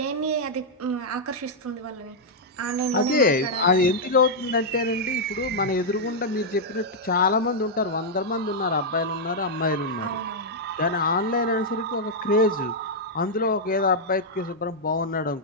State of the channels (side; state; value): both; normal; correlation -0.05